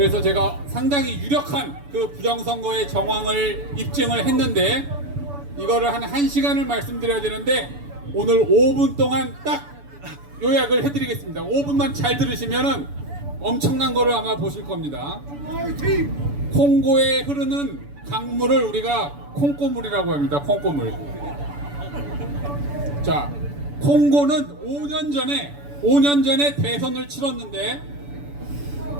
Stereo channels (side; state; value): left; late; 7.0 ms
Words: 제가 상당히 유력한 그 부정선거의 정황을 입증을 했는데, 이거를 한 1시간을 말씀드려야 되는데 오늘 5분 동안 딱 요약을 해드리겠습니다. 5분만 잘 들으시면은 엄청난 거를 아마 보실 겁니다. 콩고에 흐르는 강물을 우리가 콩고물이라고 합니다. 콩고물. 자, 콩고는 5년 전에 대선을 치렀는데